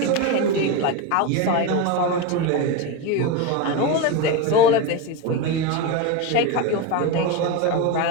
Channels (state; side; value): different; both; correlation 0.05